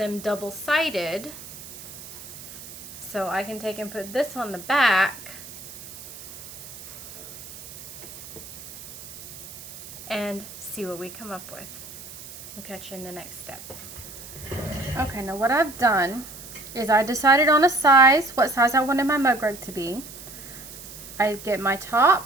double-sided. So I can take and put this on the back. And see what we come up with. We'll catch you in the next step. Okay, now what I've done is I decided on a size, what size I wanted my mug rug to be. I get my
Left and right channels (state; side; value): noise; right; hiss, 14 dB below the sound